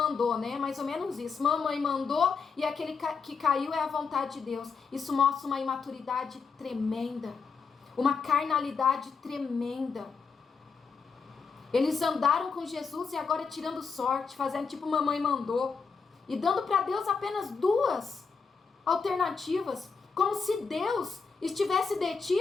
né? Mais ou menos isso. Mamãe mandou e aquele que caiu é a vontade de Deus. Isso mostra uma imaturidade tremenda. Uma carnalidade tremenda. Eles andaram com Jesus e agora tirando sorte, fazendo tipo mamãe mandou. E dando para Deus apenas duas alternativas. Como se Deus estivesse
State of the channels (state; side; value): quieter; right; 5.3 dB